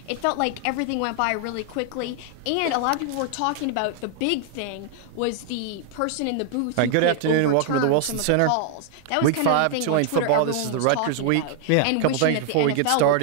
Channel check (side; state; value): both; different; correlation 0.00